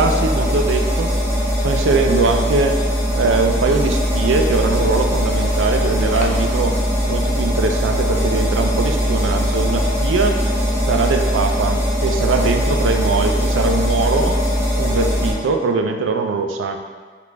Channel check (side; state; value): both; normal; correlation 0.47